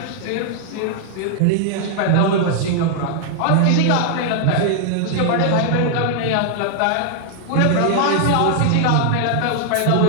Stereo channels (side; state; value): both; different; correlation 0.00